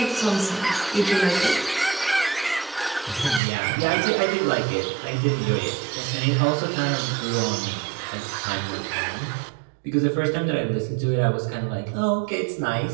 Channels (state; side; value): drops out; left; at 3.4 s